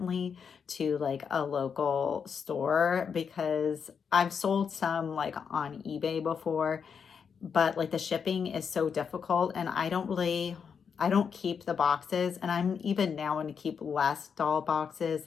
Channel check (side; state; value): right; quieter; 6.6 dB